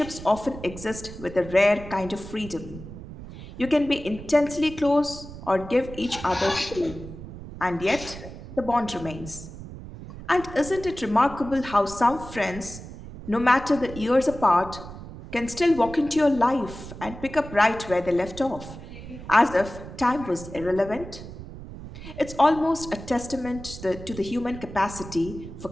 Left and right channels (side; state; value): right; noise; rumble, 13 dB below the sound